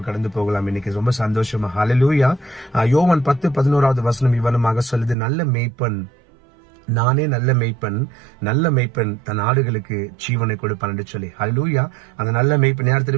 கடந்து போகலாம். இன்னைக்கு ரொம்ப சந்தோஷமா ஹல்லேலூயா. யோவான் 10:11 வசனம் இவ்வளமாக சொல்லுது, நல்ல மேய்ப்பன் நானே நல்ல மெய்ப்பன் தன் ஆடுகளுக்கு ஜீவனை கொடுப்பான் என்று சொல்லி. ஹல்லேலூயா. அந்த நல்ல மெய்ப்பன் யார்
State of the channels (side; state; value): left; drops out; at 5.2 s